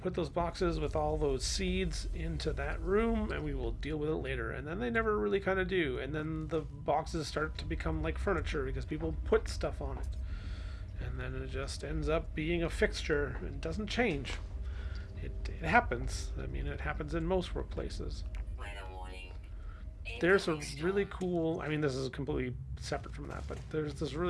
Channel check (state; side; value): identical; both; correlation 1.00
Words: those boxes with all those seeds into that room and we will deal with it later. And then they never really kind of do. And then the boxes start to become like furniture because people put stuff on it. And then it just ends up being a fixture and doesn't change. It happens. I mean, it happens in most workplaces. There's a really cool, I mean, this is completely separate from that, but there's this